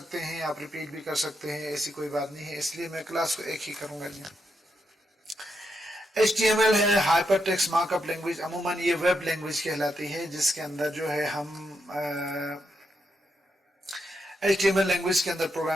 हैं, आप रिपीट भी कर सकते हैं, ऐसी कोई बात नहीं है। इसलिए मैं क्लास को एक ही करूंगा जी। HTML है हाइपर टेक्स्ट मार्कअप लैंग्वेज। अमूमन ये वेब लैंग्वेज कहलाती है जिसके अंदर जो है हम HTML लैंग्वेज के अंदर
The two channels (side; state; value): both; normal; correlation 0.82